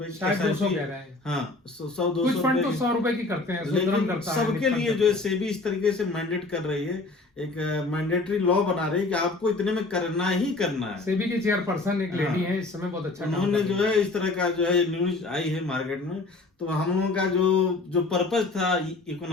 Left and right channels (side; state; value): right; quieter; 3.4 dB